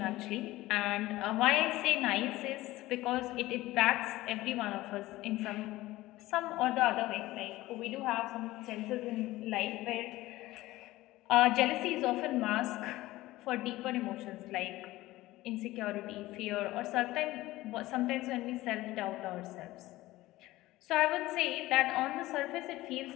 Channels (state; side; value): quieter; right; 17.6 dB